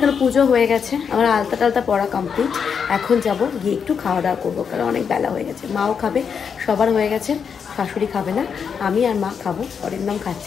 পুজো হয়ে গেছে, আমার আলতা টালতা পড়া কমপ্লিট। এখন যাব গিয়ে একটু খাওয়া দাওয়া করবো, কারণ অনেক বেলা হয়ে গেছে। মাও খাবে, সবার হয়ে গেছে, শাশুড়ি খাবে না, আমি আর মা খাবো। অনেক নাম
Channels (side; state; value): right; quieter; 6.7 dB